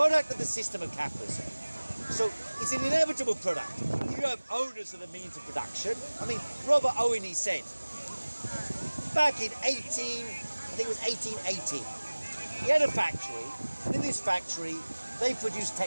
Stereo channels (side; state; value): both; inverted; correlation -1.00